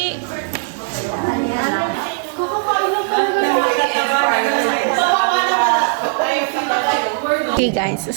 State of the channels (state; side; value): silent; left; digital silence